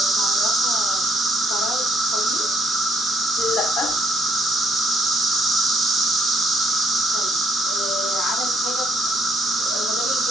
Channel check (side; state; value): both; normal; correlation 0.69